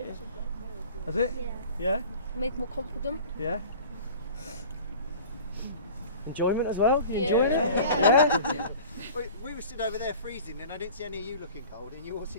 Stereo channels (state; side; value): inverted; both; correlation -0.43